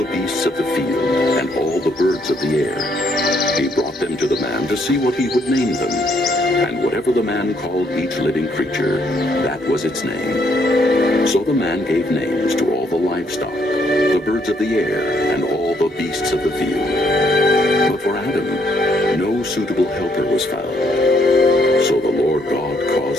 beasts of the field and all the birds of the air. He brought them to the man to see what he would name them. And whatever the man called each living creature, that was its name. So the man gave names to all the livestock, the birds of the air, and all the beasts of the field. But for Adam, no suitable helper was found. So the Lord God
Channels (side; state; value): both; normal; correlation 0.71